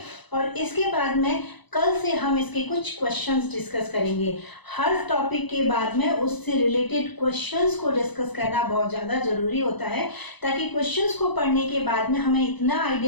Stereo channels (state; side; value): late; right; 1.0 ms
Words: और इसके बाद में कल से हम इसके कुछ क्वेश्चंस डिस्कस करेंगे। हर टॉपिक के बाद में उससे रिलेटेड क्वेश्चंस को डिस्कस करना बहुत ज़्यादा जरूरी होता है, ताकि क्वेश्चंस को पढ़ने के बाद में हमें इतना